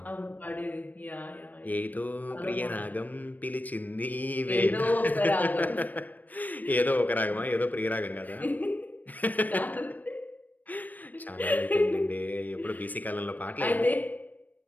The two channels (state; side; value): late; right; 0.083 ms